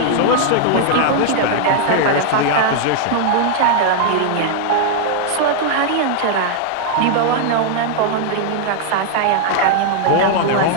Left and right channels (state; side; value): different; both; correlation 0.00